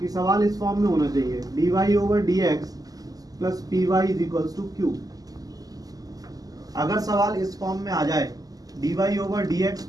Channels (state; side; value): late; left; 0.17 ms